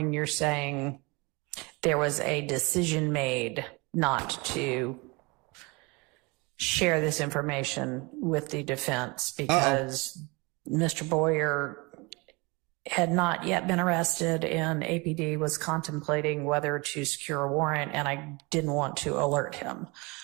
you're saying there was a decision made not to share this information with the defense because Mr. Boyer had not yet been arrested and APD was contemplating whether to secure a warrant, and I didn't want to alert him.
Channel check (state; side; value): quieter; left; 26.9 dB